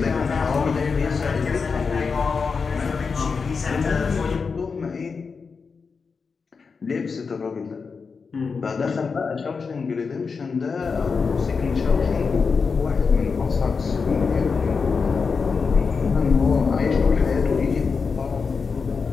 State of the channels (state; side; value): quieter; right; 5.1 dB